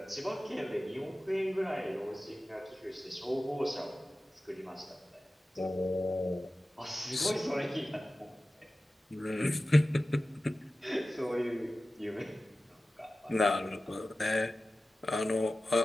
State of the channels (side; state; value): both; normal; correlation 0.95